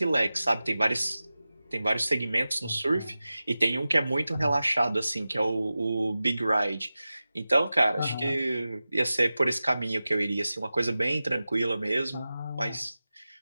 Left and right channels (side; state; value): both; inverted; correlation -0.95